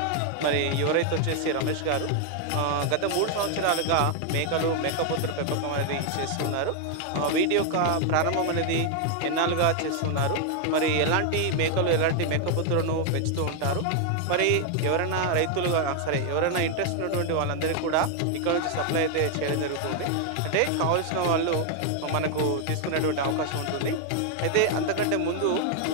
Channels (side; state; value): both; different; correlation 0.00